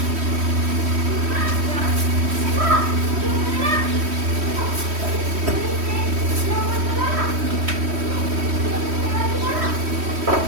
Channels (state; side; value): late; left; 3.1 ms